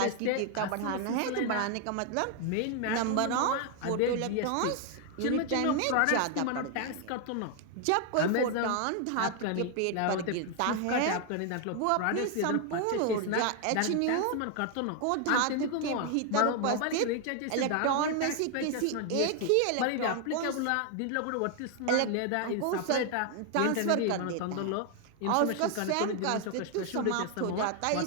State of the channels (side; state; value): both; different; correlation 0.00